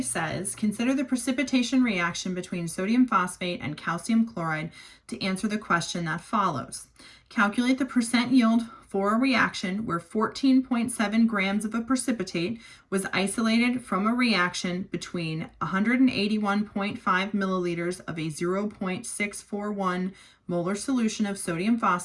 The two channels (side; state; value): both; identical; correlation 1.00